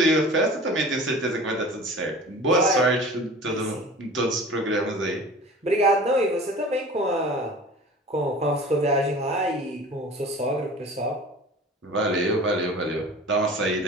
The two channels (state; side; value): normal; both; correlation 0.41